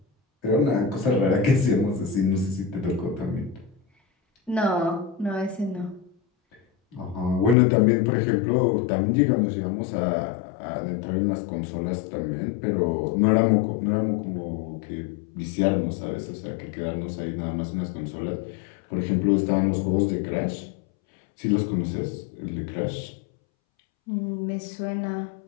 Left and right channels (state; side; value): drops out; right; at 7.6 s